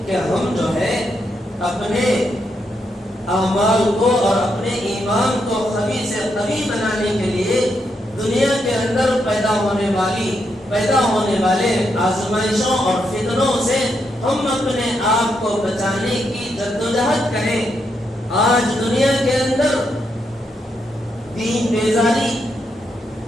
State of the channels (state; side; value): normal; both; correlation 0.81